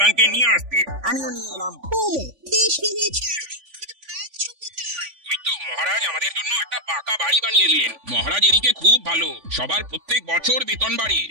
নিয়ে আসতে, আমিও নিয়ে এলাম। মহারাজ, মহারাজ আমাদের জন্য একটা পাকা বাড়ি বানিয়ে দিলেন। মহারাজ এদিকে খুব ভালো, সবার প্রত্যেক বছর বেতন বাড়ে।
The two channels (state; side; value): late; left; 3.5 ms